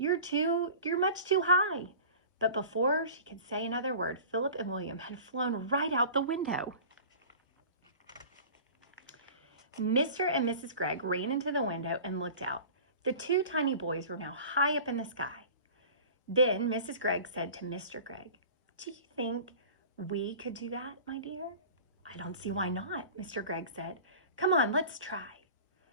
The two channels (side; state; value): both; inverted; correlation -0.40